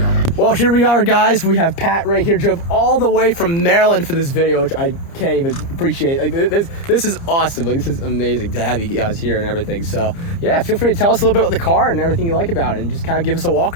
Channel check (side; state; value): right; late; 30 ms